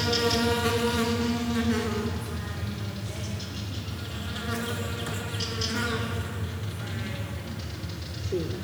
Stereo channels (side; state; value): both; identical; correlation 1.00